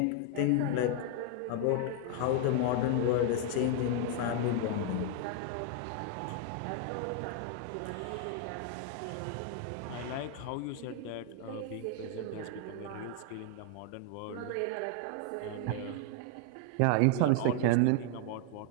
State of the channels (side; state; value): both; different; correlation 0.00